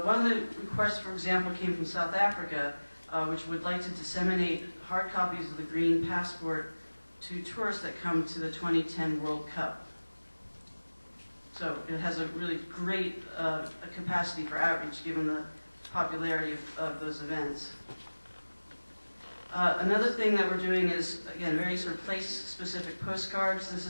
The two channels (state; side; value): inverted; both; correlation -1.00